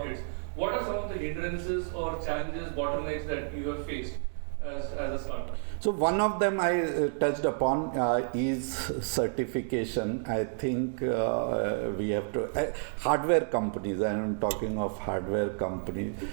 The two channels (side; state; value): left; silent; digital silence